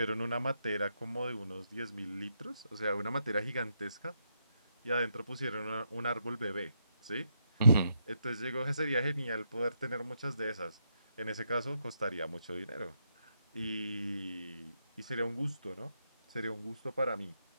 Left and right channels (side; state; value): both; inverted; correlation -0.80